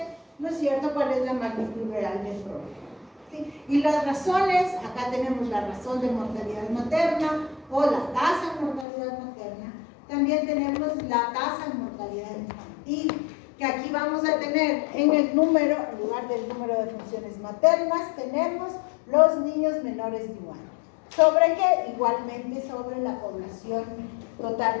¿no es cierto?, cuál es la magnitud real del problema. ¿Sí? Y las razones, acá tenemos la razón de mortalidad materna o la tasa de mortalidad materna. También tenemos la tasa de mortalidad infantil, que aquí vamos a tener en el número, en lugar del número de funciones maternas, tenemos los niños menores de 1 año. ¿Sobre qué? Igualmente sobre la población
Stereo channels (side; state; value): right; drops out; at 8.8 s